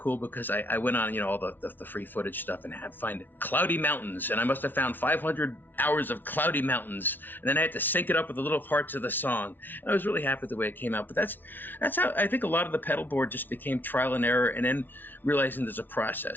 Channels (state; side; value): late; right; 0.090 ms